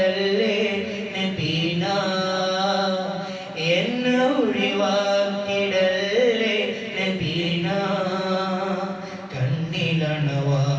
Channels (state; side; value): identical; both; correlation 1.00